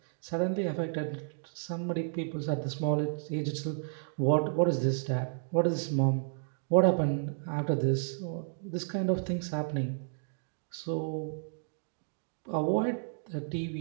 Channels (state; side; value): silent; left; digital silence